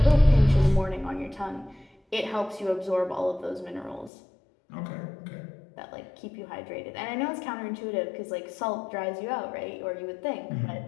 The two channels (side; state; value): right; drops out; at 4.1 s